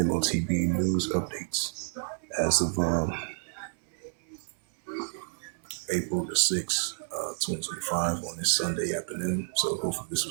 news updates as of April the 6th, 2025 on this Sunday afternoon. So hopefully this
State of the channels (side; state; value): left; silent; 58 dB below the other